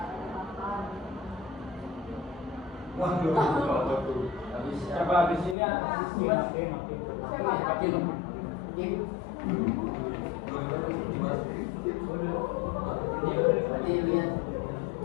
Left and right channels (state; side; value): drops out; right; at 5.6 s